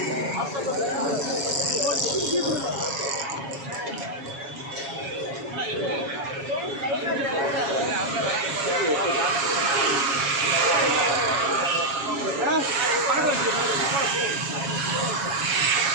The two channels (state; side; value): late; left; 7.3 ms